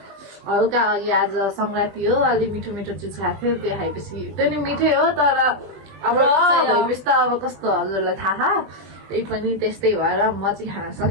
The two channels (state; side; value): late; left; 20 ms